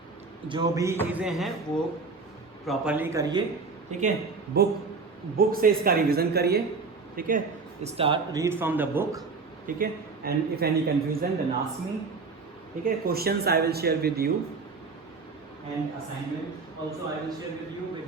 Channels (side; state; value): left; quieter; 4.4 dB